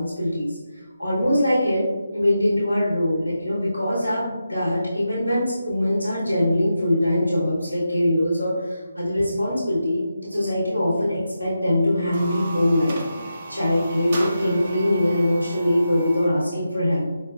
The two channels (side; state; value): both; inverted; correlation -0.89